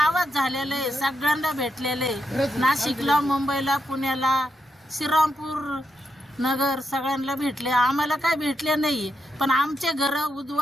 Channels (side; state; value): both; normal; correlation 0.83